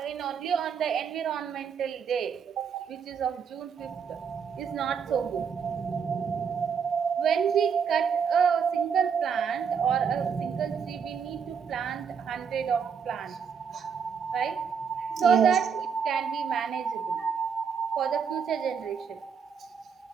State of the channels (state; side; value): quieter; left; 6.7 dB